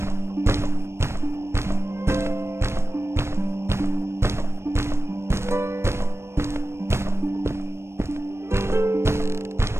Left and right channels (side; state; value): left; late; 0.13 ms